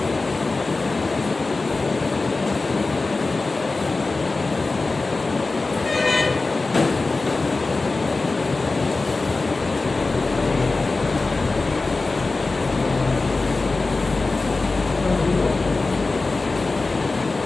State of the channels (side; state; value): right; quieter; 3.6 dB